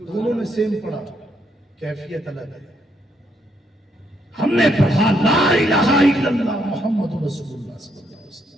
دونوں نے سیم پڑھا، کیفیت الگ ہے. ہم نے پڑھا لا الہ الا اللہ محمد رسول اللہ صلی اللہ علیہ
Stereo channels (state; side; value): normal; both; correlation 0.74